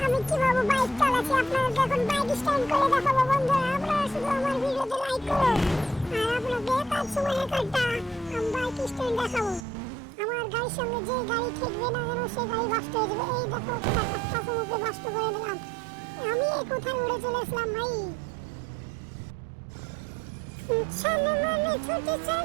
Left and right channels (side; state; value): left; drops out; at 9.6 s